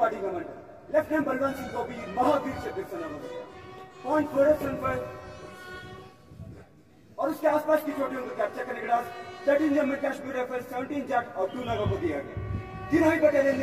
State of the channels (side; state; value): both; identical; correlation 1.00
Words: commander lieutenant Balwant Singh को भी महावीर चक्र से नवाजा गया। पॉइंट 47 पर और उसके आसपास की चोटियों को कैप्चर करने के बाद 13 जम्मू कश्मीर राइफल्स, 17 जाट और 2 नागा को दिया गया। तीनों ही बटालियन